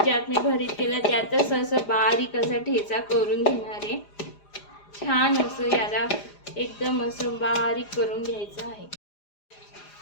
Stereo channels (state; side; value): late; right; 4.9 ms